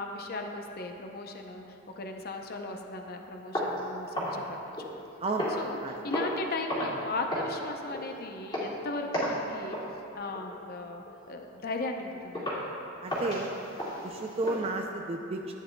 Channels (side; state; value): both; normal; correlation 0.20